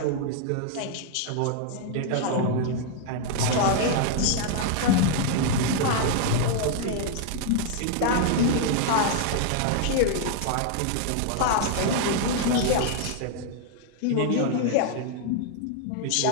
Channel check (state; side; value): different; both; correlation 0.00